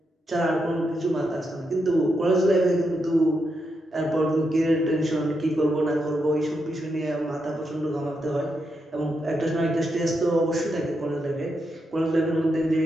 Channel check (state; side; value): normal; both; correlation 0.83